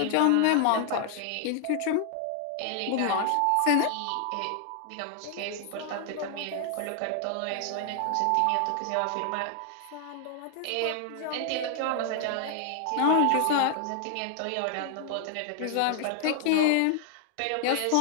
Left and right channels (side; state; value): both; different; correlation 0.00